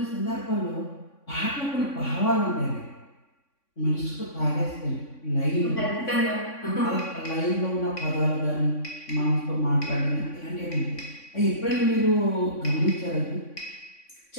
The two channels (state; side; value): late; right; 3.5 ms